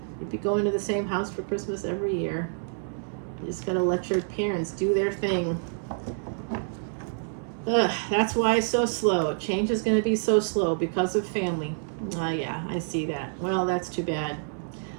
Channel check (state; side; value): silent; left; 60 dB below the other